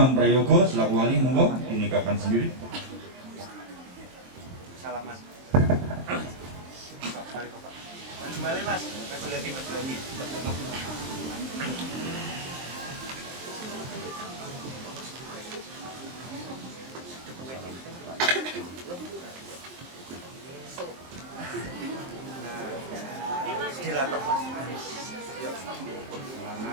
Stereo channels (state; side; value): late; left; 23 ms